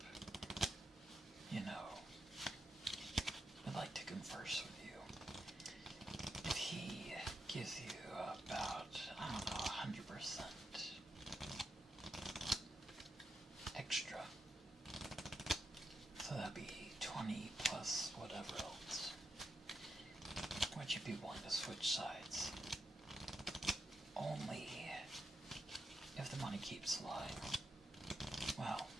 I'd like to converse with you. If he gives you about, 100% extra, so that'd be 20 plus whatever else, would you be willing to switch sides? Only if the money keeps lying. Well,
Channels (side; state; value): both; normal; correlation 0.84